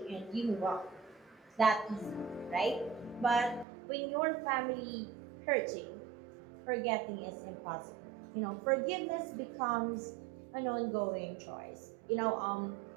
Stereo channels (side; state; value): left; drops out; at 3.7 s